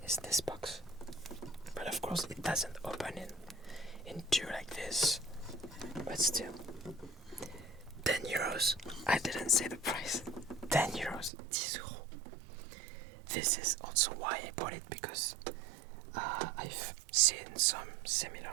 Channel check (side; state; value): left; drops out; at 11.3 s